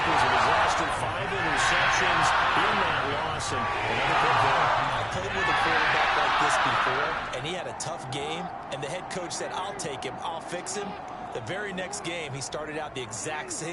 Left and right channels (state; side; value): identical; both; correlation 1.00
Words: was a disaster. 5 interceptions in that loss, and another big there. I played with a quarterback like this before, and he had a tough game, and the head coach said, I'll take him, I'll fix him. The very next game, he started out the exact